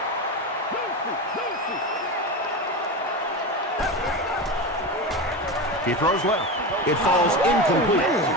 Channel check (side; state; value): both; normal; correlation 0.21